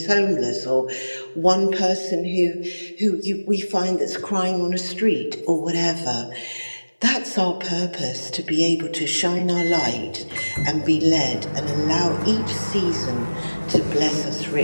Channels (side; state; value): both; inverted; correlation -1.00